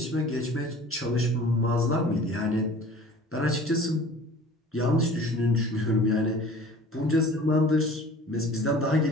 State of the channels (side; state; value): both; normal; correlation 0.45